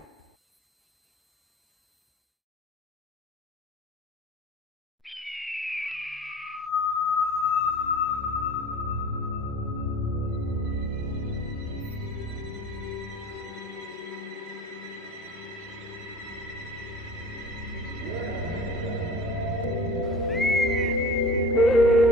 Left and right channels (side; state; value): both; normal; correlation 0.40